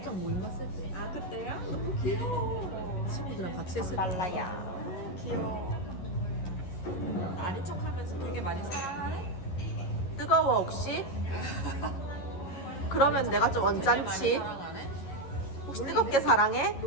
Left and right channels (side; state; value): right; late; 11 ms